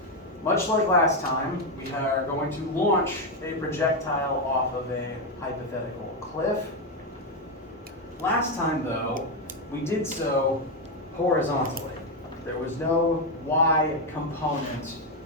Much like last time, we are going to launch a projectile off of a hypothetical cliff. Last time, though, we did so horizontally. There was no y component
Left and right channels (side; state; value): both; normal; correlation 0.06